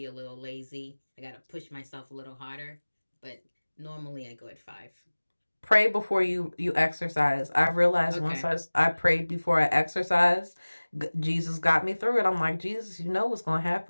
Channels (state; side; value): inverted; both; correlation -1.00